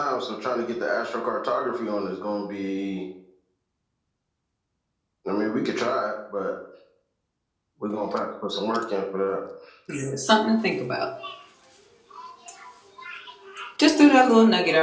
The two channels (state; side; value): identical; both; correlation 1.00